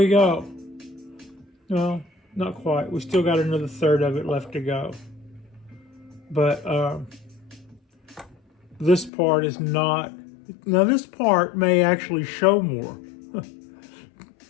go. No, not quite. We still got another third of it left to go. But this part is not. Now this part may actually show more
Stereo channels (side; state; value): right; drops out; at 9.1 s